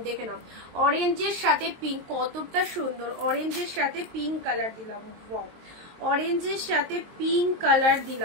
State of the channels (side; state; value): left; late; 23 ms